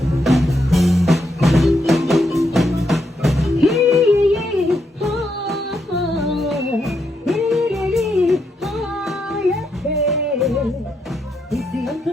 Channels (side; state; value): both; normal; correlation 0.80